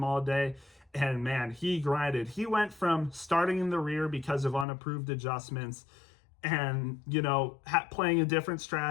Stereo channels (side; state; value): right; drops out; at 4.7 s